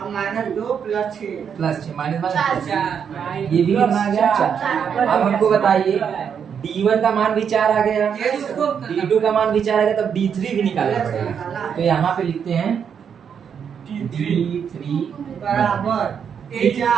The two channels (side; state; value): left; quieter; 7.4 dB